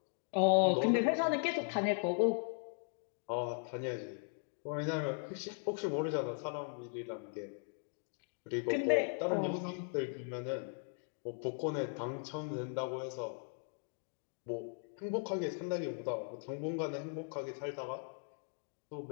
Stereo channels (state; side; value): silent; right; 52 dB below the other